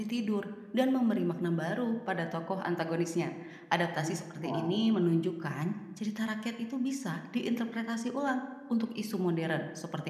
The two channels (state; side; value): identical; both; correlation 1.00